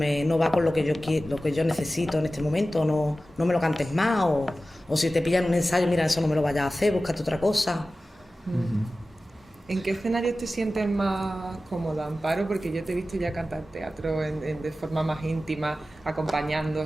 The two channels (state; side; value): normal; both; correlation 0.95